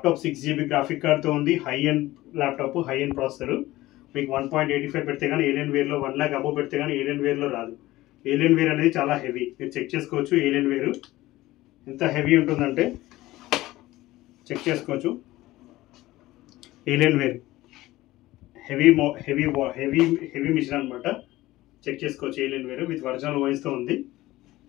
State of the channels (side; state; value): right; quieter; 17.3 dB